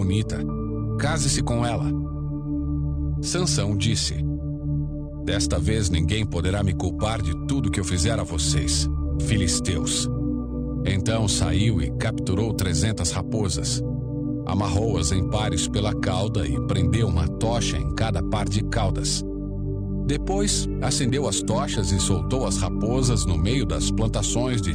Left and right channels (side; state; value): both; identical; correlation 1.00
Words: Case-se com ela. Sansão disse: Desta vez ninguém poderá me culpar de tudo que eu fizer a vocês, filisteus. Então saiu e capturou 300 raposas. Amarrou-as em pares pela cauda e prendeu uma tocha em cada par de caudas. Depois, acendeu as tochas e soltou as raposas no meio das plantações